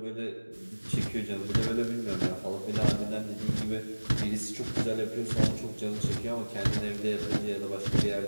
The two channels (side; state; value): both; inverted; correlation -1.00